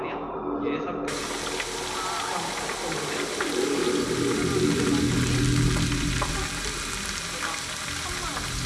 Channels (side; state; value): both; identical; correlation 1.00